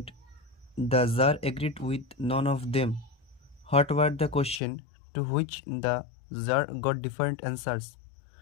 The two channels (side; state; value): right; drops out; at 4.6 s